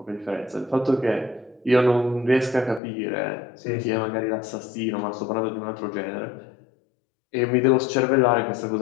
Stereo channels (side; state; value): right; drops out; at 2.8 s